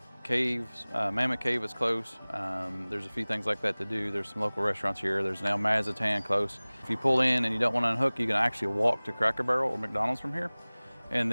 Caves, Mammoth Cave is close. There's a few things like that to do. There's some local restaurants here. There's now Mazatan close. If you pull in and you don't want to unhook, you can actually walk to Cracker Barrel or McDonald's from here. And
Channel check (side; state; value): both; inverted; correlation -1.00